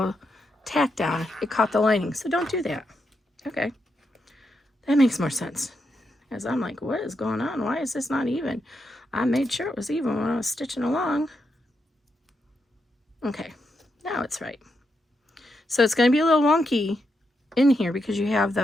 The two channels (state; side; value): normal; both; correlation 0.83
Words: tack down, it caught the lining. So don't do that. Okay. That makes more sense. As I'm like, what is going on? Why is this not even? I made sure it was even when I was stitching along. Okay. Now it's right. So it's going to be a little wonky in here because you have